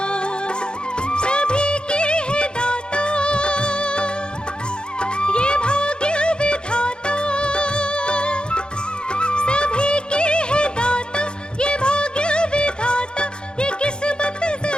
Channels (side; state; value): right; late; 0.050 ms